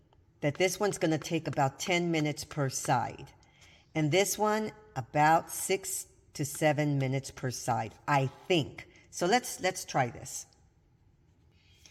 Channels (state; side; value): identical; both; correlation 1.00